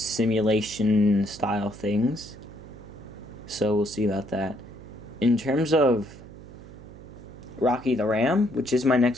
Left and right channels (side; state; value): right; noise; hum, 17 dB below the sound